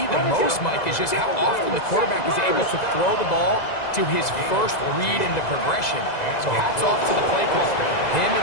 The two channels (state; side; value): late; right; 2.0 ms